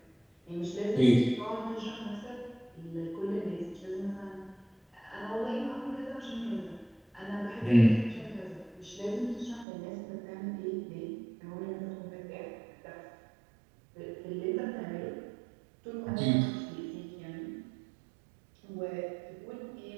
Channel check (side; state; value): left; drops out; at 9.7 s